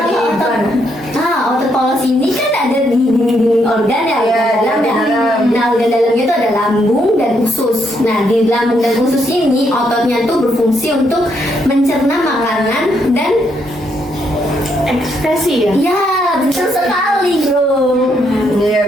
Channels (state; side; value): normal; both; correlation 0.75